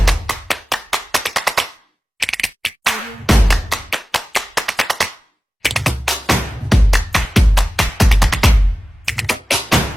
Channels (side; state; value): both; normal; correlation 0.95